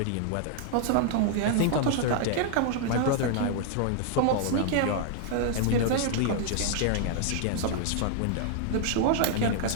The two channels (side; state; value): both; different; correlation 0.00